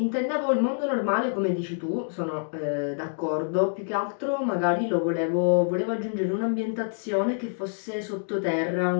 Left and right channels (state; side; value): silent; right; digital silence